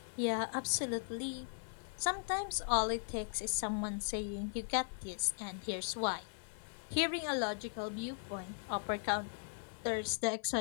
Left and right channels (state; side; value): silent; right; 52 dB below the other